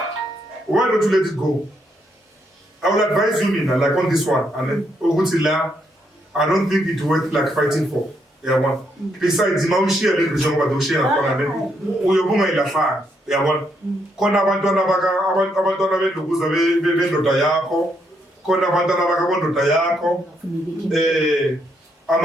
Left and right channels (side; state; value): both; normal; correlation 0.76